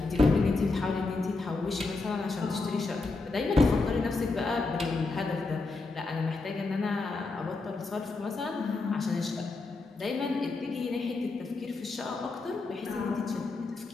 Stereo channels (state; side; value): quieter; right; 3.6 dB